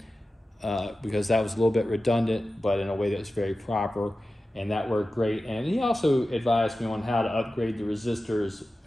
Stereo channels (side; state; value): both; normal; correlation 0.94